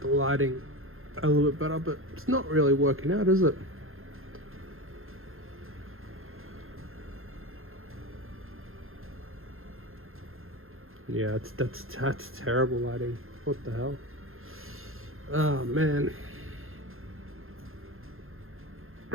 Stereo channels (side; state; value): left; late; 0.61 ms